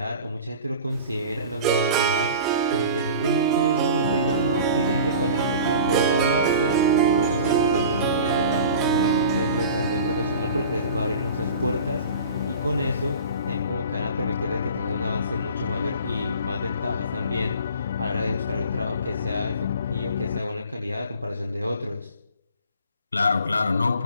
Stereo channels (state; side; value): inverted; both; correlation -0.41